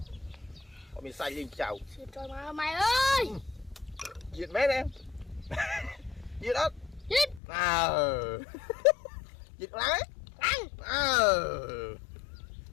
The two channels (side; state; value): right; drops out; at 7.4 s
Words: mình xay lên chào trời mà mày ơi diệt mét em diệt ớt diệt diệt lái